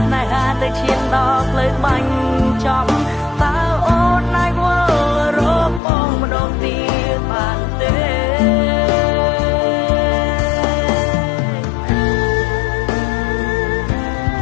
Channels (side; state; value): right; drops out; at 5.8 s